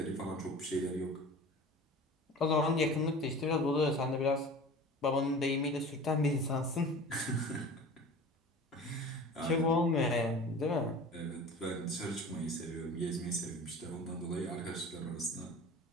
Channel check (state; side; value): normal; both; correlation 0.39